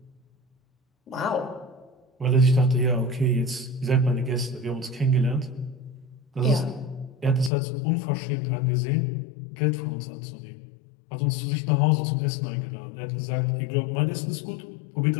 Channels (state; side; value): drops out; right; at 7.5 s